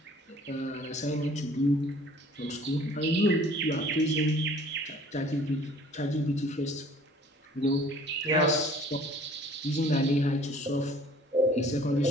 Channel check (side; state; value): both; normal; correlation 0.52